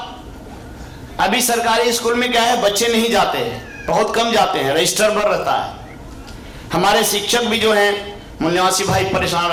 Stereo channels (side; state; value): both; identical; correlation 1.00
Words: अभी सरकारी स्कूल में क्या है, बच्चे नहीं जाते हैं, बहुत कम जाते हैं, रजिस्टर पर रहता है। हमारे शिक्षक भी जो हैं मूल्यवासी भाई परेशान